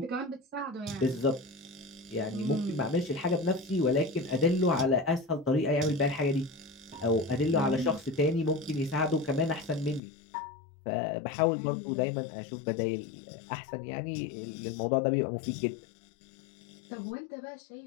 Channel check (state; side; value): drops out; right; at 10.0 s